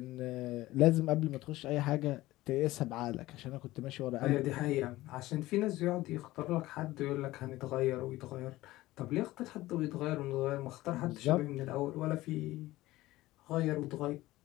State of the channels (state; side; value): quieter; right; 17.5 dB